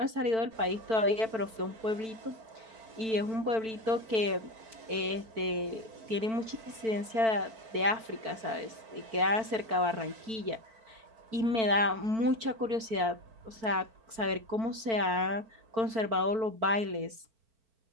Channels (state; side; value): late; left; 4.5 ms